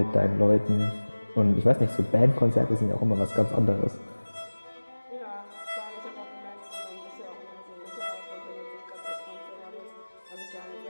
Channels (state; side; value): inverted; both; correlation -1.00